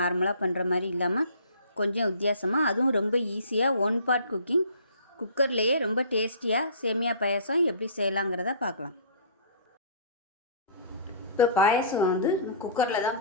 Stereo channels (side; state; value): both; inverted; correlation -0.46